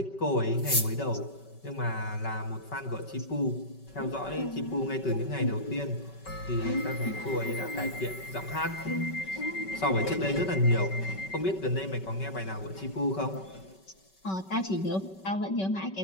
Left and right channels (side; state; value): right; late; 5.2 ms